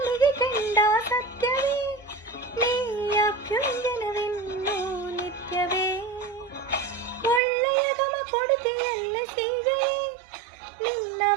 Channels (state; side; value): drops out; left; at 7.4 s